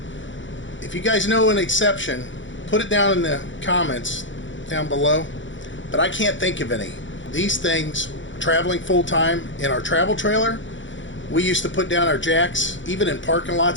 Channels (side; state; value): right; late; 0.55 ms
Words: If you guys know an exception, put it down in the comments down below, but I can't think of any. These things, traveling full-time in our travel trailer, we used to put down our jacks, even in parking